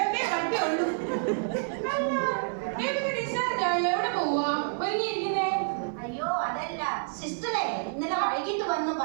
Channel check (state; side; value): silent; left; 59 dB below the other